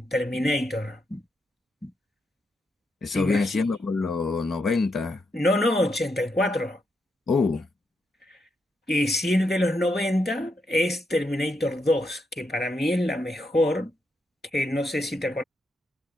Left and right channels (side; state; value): both; normal; correlation 0.81